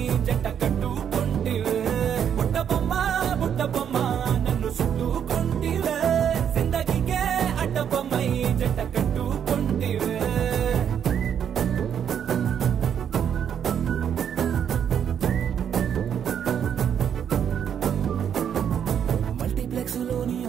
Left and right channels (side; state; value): left; quieter; 8.6 dB